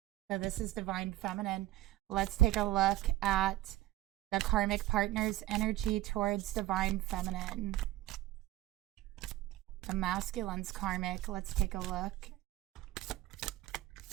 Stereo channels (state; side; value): quieter; left; 15.7 dB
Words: So this is Divine Feminine. Let's take a look at the karmic partner's energy towards Divine Feminine. The masculine's karmic. Let's take a look.